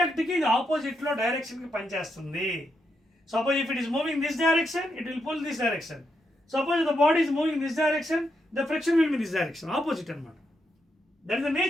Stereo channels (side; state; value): both; normal; correlation 0.82